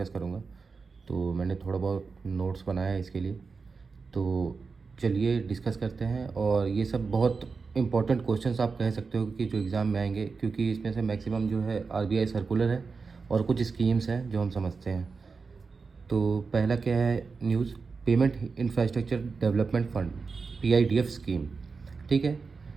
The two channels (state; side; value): quieter; left; 4.7 dB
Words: करूंगा। तो मैंने थोड़ा बहुत नोट्स बनाया है इसके लिए। तो चलिए डिस्कस करते हैं। और ये सब बहुत इंपॉर्टेंट क्वेश्चंस आप कह सकते हो कि जो एग्ज़ाम में आएंगे, क्योंकि इसमें से मैक्सिमम जो है आरबीआई सर्कुलर है और कुछ स्कीम्स हैं जो हम समझते हैं। तो पहला क्या है news, payment infrastructure development fund, PIDF scheme. ठीक है,